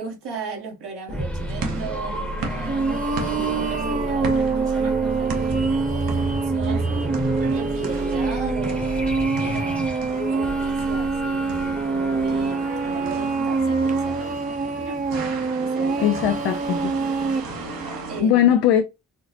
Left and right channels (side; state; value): both; normal; correlation 0.50